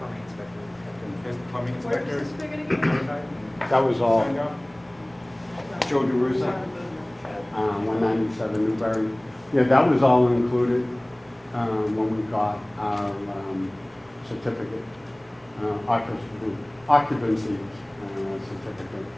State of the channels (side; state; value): right; noise; hum, 29 dB below the sound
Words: inspector. Is the plumbing Where inspector? is the spigot again? That was all. Signed off? Joe DeRusa, 197 Newbury. Yeah, that was all included when we got our certificate, occupancy certificate.